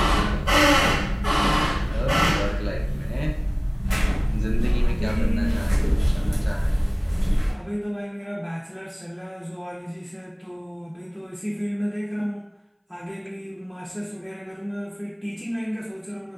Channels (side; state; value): both; identical; correlation 1.00